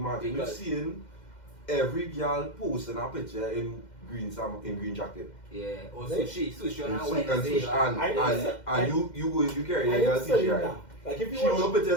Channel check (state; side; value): late; right; 2.1 ms